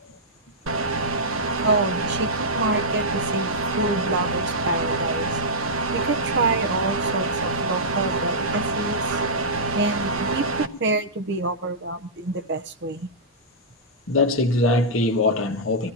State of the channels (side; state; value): both; normal; correlation -0.12